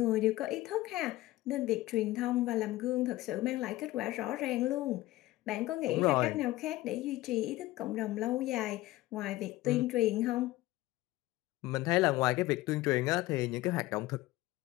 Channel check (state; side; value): quieter; right; 17.5 dB